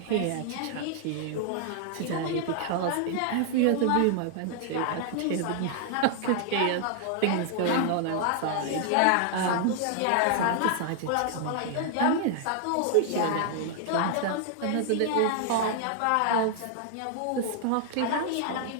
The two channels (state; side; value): different; both; correlation 0.00